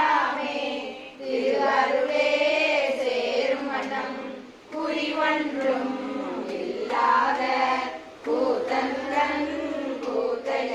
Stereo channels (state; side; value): identical; both; correlation 1.00